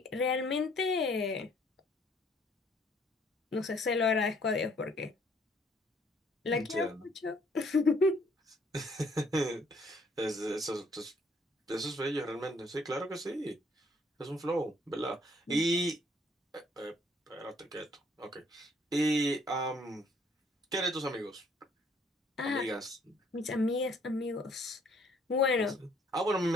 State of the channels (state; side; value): normal; both; correlation 0.63